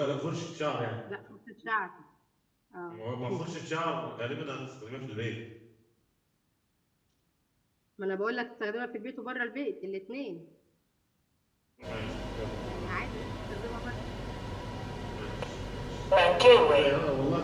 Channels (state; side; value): identical; both; correlation 1.00